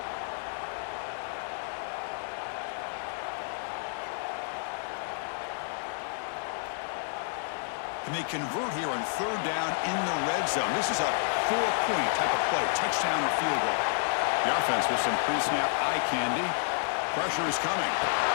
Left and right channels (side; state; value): right; silent; digital silence